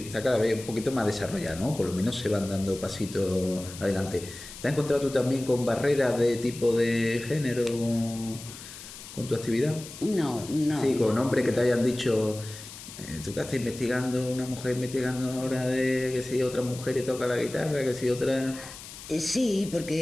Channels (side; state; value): left; noise; hiss, 14 dB below the sound